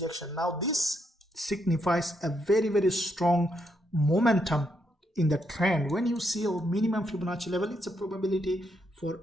Now this signifies a very strong momentum in the trend. When you see a minimum Fibonacci level, it's a probability for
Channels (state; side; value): normal; both; correlation 0.78